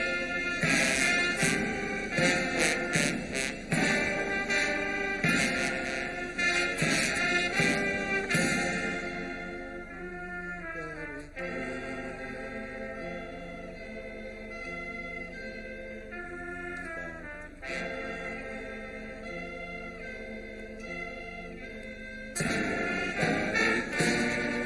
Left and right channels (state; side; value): identical; both; correlation 1.00